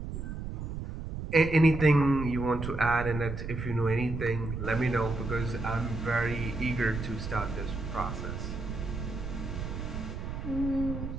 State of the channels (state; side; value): noise; right; rumble, 6 dB below the sound